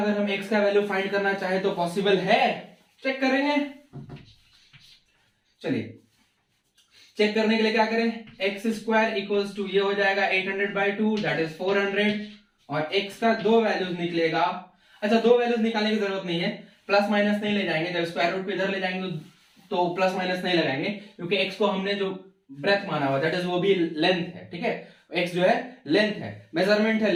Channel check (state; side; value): identical; both; correlation 1.00